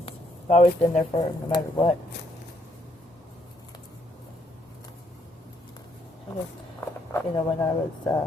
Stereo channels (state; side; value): normal; both; correlation 0.71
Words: I've always been there for him, no matter what. I guess, you know, when I was